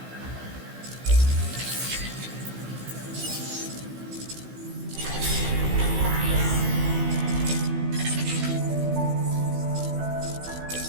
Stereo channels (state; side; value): late; left; 16 ms